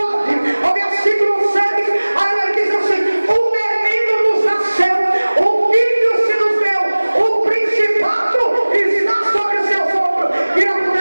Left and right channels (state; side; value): inverted; both; correlation -1.00